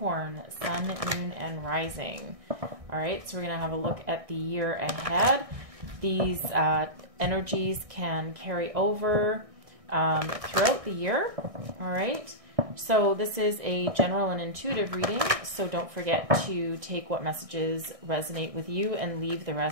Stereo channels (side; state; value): left; late; 1.6 ms